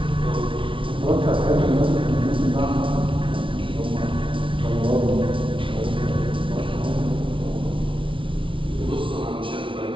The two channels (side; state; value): left; late; 0.25 ms